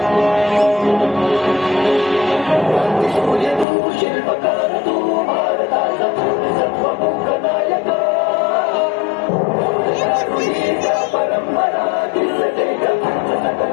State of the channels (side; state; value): right; drops out; at 3.7 s